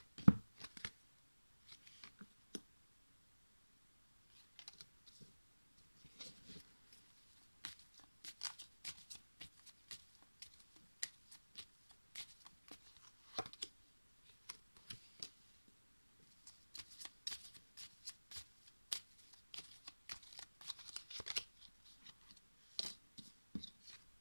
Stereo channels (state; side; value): inverted; both; correlation -1.00